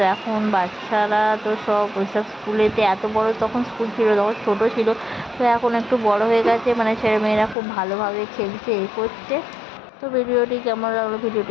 এখন বাচ্চারা তো সব ওইসব স্কুলেতে, এত বড় তখন স্কুল ছিল, তখন ছোটো ছিল, তো এখন একটু বড় হয়ে গেছে, মানে ছেলেমেয়েরা খুব ভালোভাবে খেলছে, করছে। তো ভিডিওটি কেমন লাগলো,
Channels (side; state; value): right; drops out; at 7.6 s